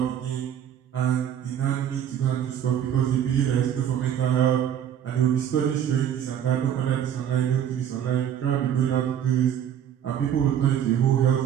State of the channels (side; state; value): left; quieter; 9.7 dB